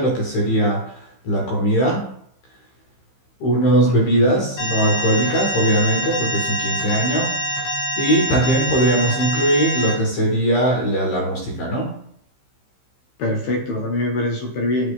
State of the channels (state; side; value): late; right; 15 ms